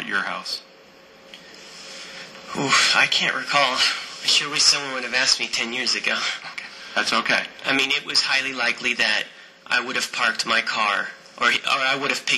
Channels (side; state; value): both; identical; correlation 1.00